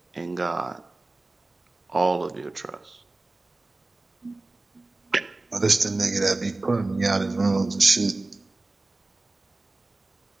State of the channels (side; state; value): left; quieter; 3.1 dB